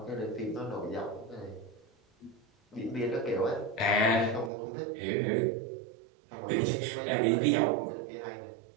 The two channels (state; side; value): drops out; left; at 4.5 s